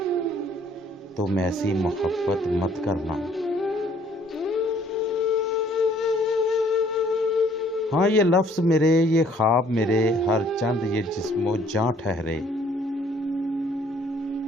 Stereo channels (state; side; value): normal; both; correlation 0.60